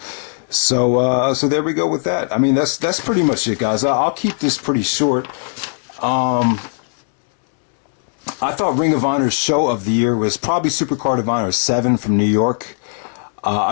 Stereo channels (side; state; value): right; silent; digital silence